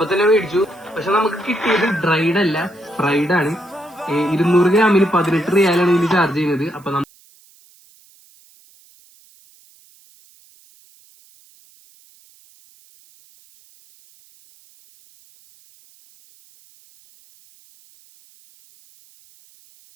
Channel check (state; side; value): noise; right; hiss, 29 dB below the sound